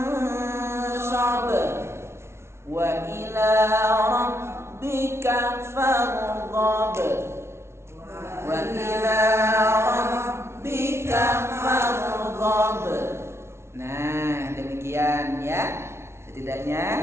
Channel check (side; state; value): left; late; 0.13 ms